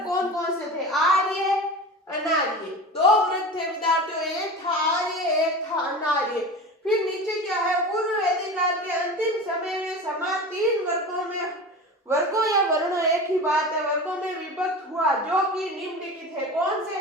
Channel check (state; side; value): normal; both; correlation 0.31